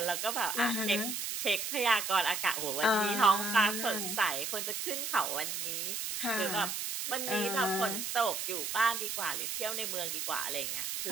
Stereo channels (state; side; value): noise; right; hiss, 3 dB below the sound